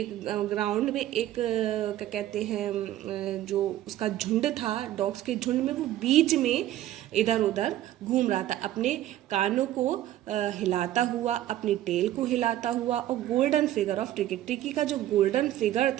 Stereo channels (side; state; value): left; quieter; 13.5 dB